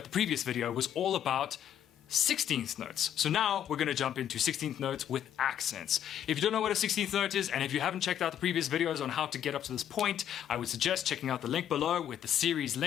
previous video was all about 16th notes. So now we're going to jump into 16th notes with accents. If you don't know what a 16th note is, and if you haven't checked out the previous videos on how to get up to this point, I would suggest checking out the link below with the series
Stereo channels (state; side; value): quieter; right; 10.2 dB